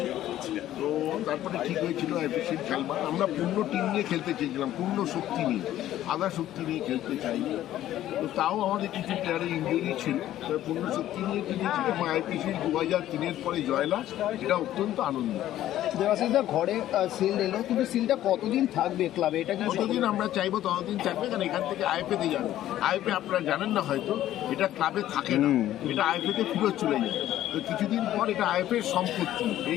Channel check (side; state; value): right; quieter; 13.1 dB